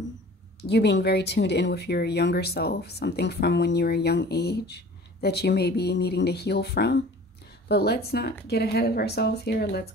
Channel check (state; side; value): normal; both; correlation 0.45